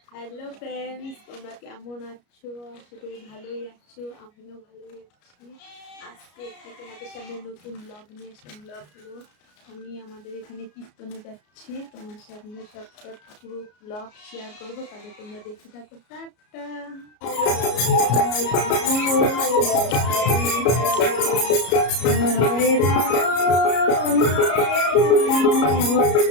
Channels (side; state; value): right; late; 33 ms